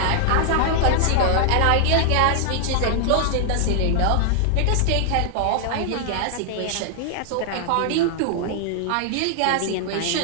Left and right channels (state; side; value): different; both; correlation 0.00